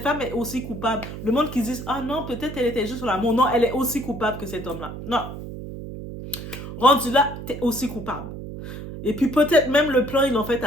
femme est aussi coupable. Le monde qui dit, ah non, peut-être elle était juste sur l'amour. Non, elle est aussi coupable que cet homme-là. Non. Rendu là, t'es aussi coupable. Et puis peut-être même le plan, ils l'ont fait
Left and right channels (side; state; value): right; noise; hum, 10 dB below the sound